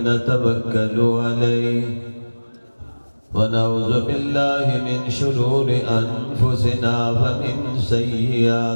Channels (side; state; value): both; inverted; correlation -1.00